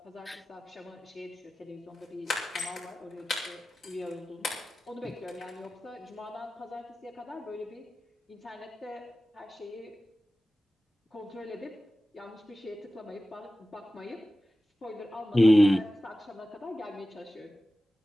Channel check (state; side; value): normal; both; correlation 0.95